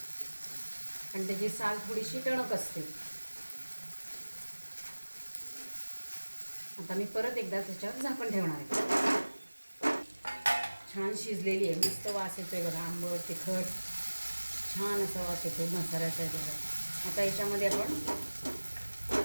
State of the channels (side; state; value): both; inverted; correlation -1.00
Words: आणि त्याची साल थोडीशी टणक असते। आता मी परत एकदा त्याच्यावर झाकण ठेवणार आहे। छान शिजलेली आहे, मस्त वास येतोय बघा, आंबट तिखट छान असा वास येतोय मसाल्याचा बघा। आता याच्यामध्ये आपण